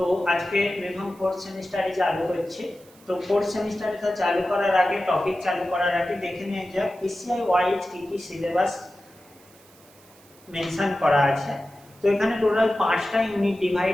আজকে BPharm fourth semester চালু হচ্ছে। তো fourth semester এটা চালু করার আগে টপিক চালু করার আগে দেখে নিয়ে যাক PCI ওয়াইজ কি কি সিলেবাস মেনশন করা আছে। তো এখানে টোটাল 5টা ইউনিট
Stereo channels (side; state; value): right; noise; hiss, 27 dB below the sound